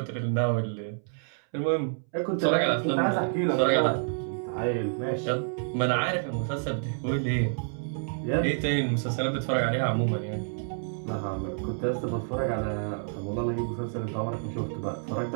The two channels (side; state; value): left; silent; 59 dB below the other